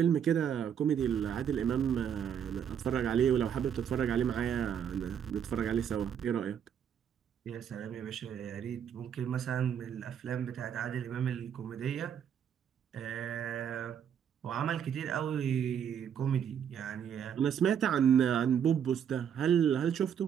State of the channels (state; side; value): quieter; left; 8.5 dB